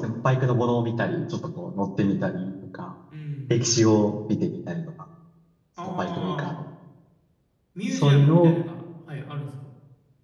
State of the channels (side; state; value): both; identical; correlation 1.00